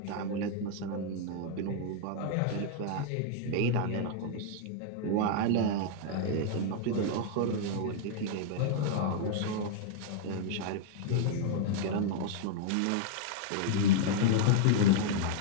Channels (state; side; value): different; both; correlation -0.01